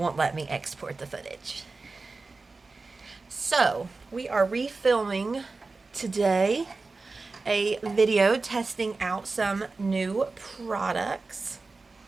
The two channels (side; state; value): left; quieter; 3.8 dB